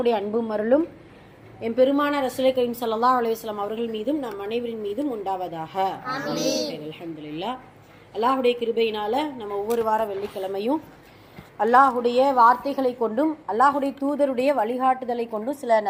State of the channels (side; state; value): both; identical; correlation 1.00